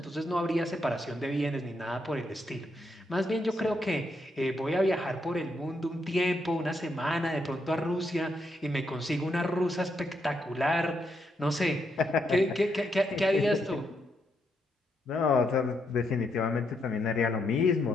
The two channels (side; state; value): both; normal; correlation 0.79